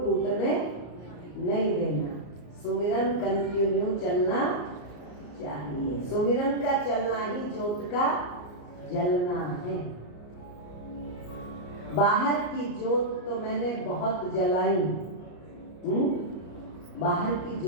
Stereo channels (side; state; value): right; late; 34 ms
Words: नहीं देना। सुमिरन कंटिन्यू चलना चाहिए। सुमिरन का चलना ही ज्योत का जलना है। बाहर की ज्योत तो मैंने बहुत जलाई, बाहर की